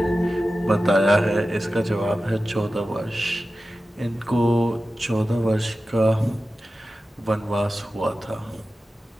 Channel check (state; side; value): normal; both; correlation 0.94